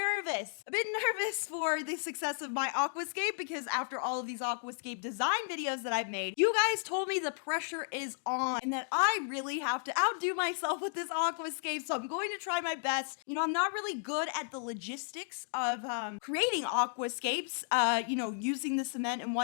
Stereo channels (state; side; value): silent; right; digital silence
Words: for the success of my aquascape, because after all of these aquascape design videos that I've made, you guys told me the pressure is on and that I really have to outdo myself with this aquascape, so I'm going to try my best. You know, I'm not really good at the logistics of creating aquascapes, using the cement and